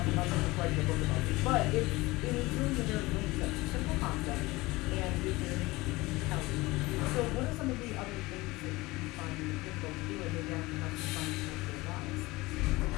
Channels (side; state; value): right; quieter; 21.1 dB